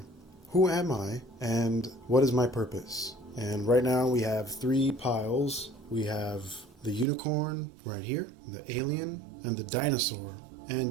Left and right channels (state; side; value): drops out; left; at 7.1 s